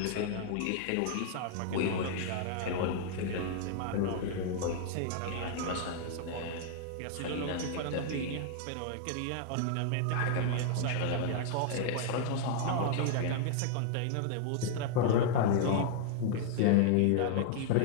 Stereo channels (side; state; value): both; different; correlation -0.01